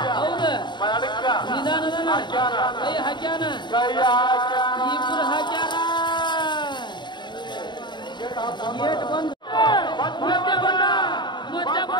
ನಿಧಾನದ ಕೈ ಹಾಕ್ಯಾನ, ಇಬ್ರು ಹಾಕ್ಯಾರ. ಗೇಟ್ ಬಂದ, ಮತ್ತೆ ಬಂದ, ಮತ್ತೆ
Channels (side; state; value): right; late; 0.22 ms